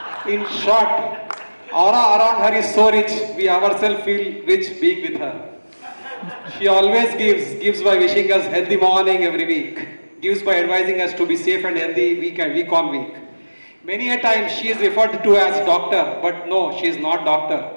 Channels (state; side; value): inverted; both; correlation -1.00